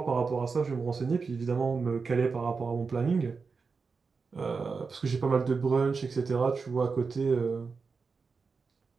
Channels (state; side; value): quieter; left; 4.9 dB